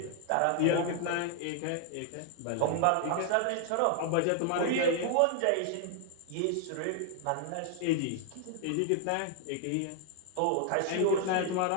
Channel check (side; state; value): both; different; correlation 0.00